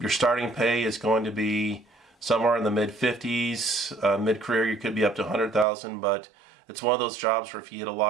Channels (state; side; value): drops out; left; at 5.7 s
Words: starting pay is going to be somewhere in the mid 50s. Mid-career, you could be up to 100,000, but it's one of those jobs where if you get a